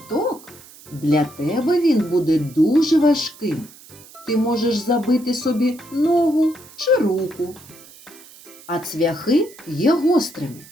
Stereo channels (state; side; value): noise; right; hiss, 21 dB below the sound